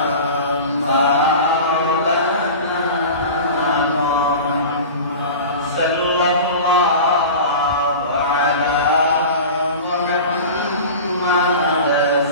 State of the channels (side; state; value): both; inverted; correlation -0.34